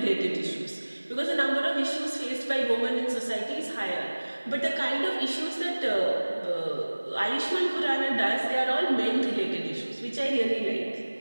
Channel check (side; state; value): both; inverted; correlation -1.00